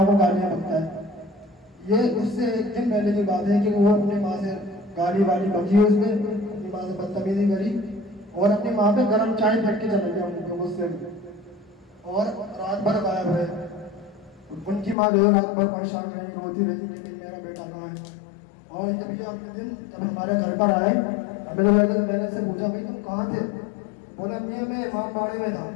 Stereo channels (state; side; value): drops out; right; at 15.0 s